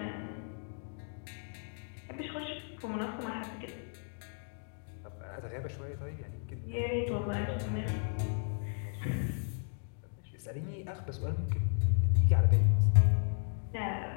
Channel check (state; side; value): silent; right; 55 dB below the other